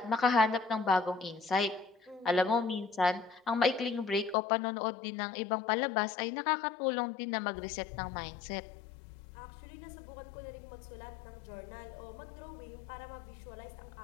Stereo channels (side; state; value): right; drops out; at 4.4 s